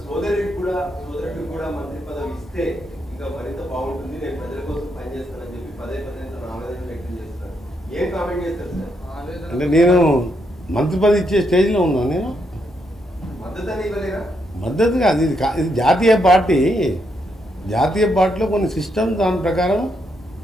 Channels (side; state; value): both; normal; correlation 0.78